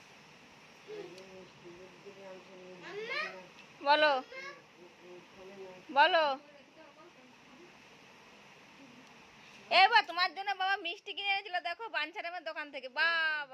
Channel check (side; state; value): both; identical; correlation 1.00